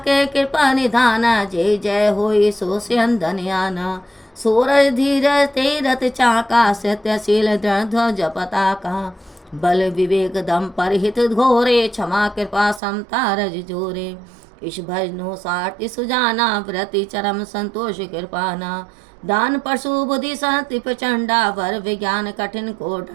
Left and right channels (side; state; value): left; drops out; at 12.8 s